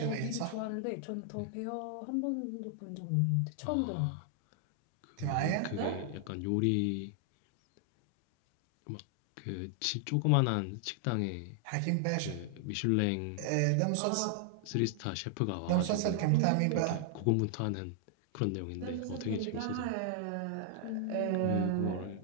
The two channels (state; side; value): different; both; correlation 0.00